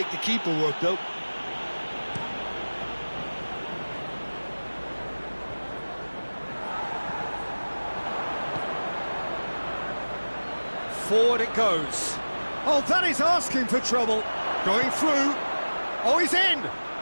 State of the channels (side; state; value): both; inverted; correlation -1.00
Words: the keeper work, though. Forward it goes. Oh, that is asking for trouble. Going through. Oh, he's in!